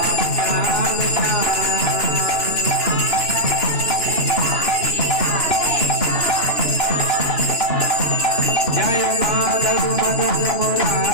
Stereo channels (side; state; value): right; late; 2.9 ms